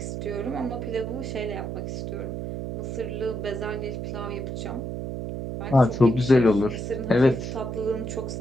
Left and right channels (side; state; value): right; noise; hum, 5 dB below the sound